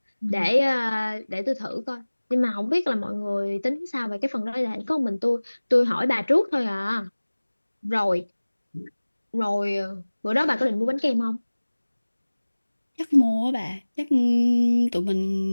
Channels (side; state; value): both; inverted; correlation -1.00